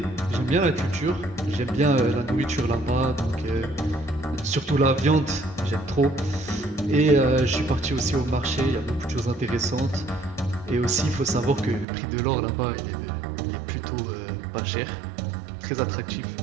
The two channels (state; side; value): drops out; left; at 11.9 s